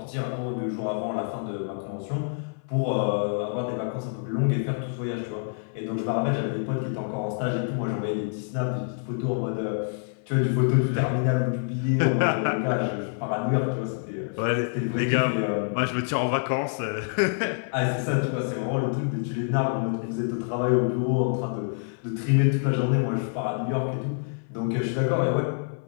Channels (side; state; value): right; silent; 57 dB below the other